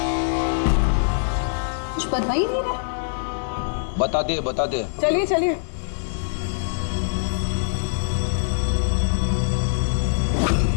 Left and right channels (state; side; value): silent; right; digital silence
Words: कुछ बता ही नहीं रहा। बता दे। चलिए चलिए।